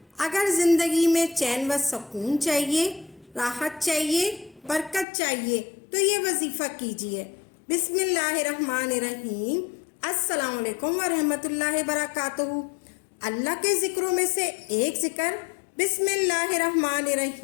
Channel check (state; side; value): drops out; right; at 5.1 s